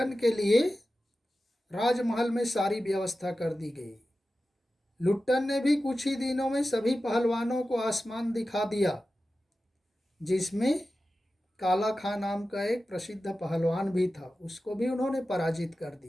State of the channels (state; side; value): normal; both; correlation 0.94